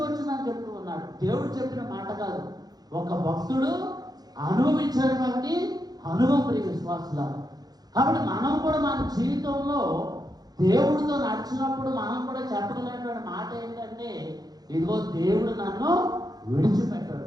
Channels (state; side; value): late; left; 0.19 ms